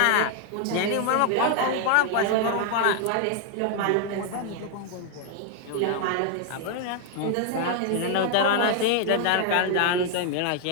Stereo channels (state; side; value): different; both; correlation 0.00